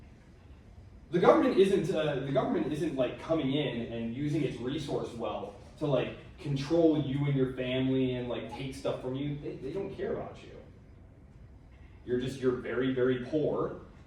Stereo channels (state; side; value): identical; both; correlation 1.00